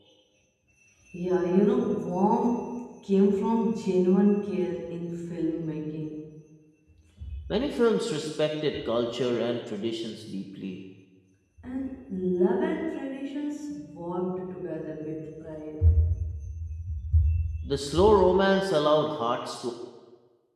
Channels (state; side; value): identical; both; correlation 1.00